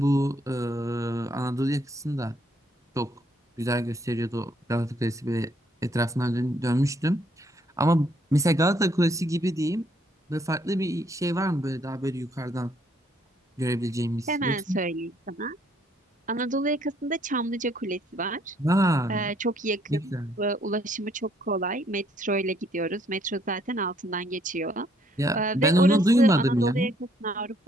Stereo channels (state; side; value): normal; both; correlation 0.68